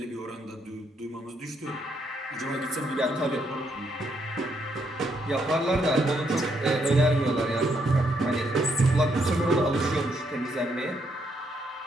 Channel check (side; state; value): both; normal; correlation 0.75